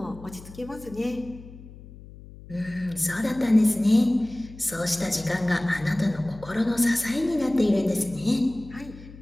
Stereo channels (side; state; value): left; noise; hum, 18 dB below the sound